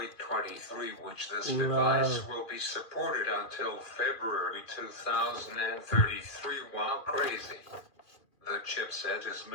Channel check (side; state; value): right; late; 2.4 ms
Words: 23, which this device will be supported until February 2033. Wow, crazy. The chipset is